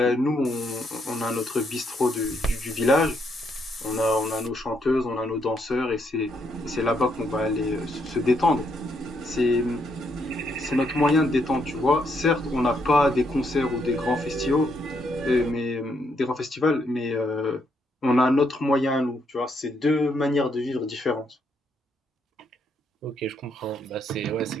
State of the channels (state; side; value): normal; both; correlation 0.75